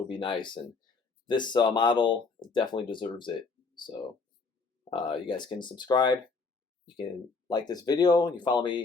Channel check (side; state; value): right; quieter; 4.4 dB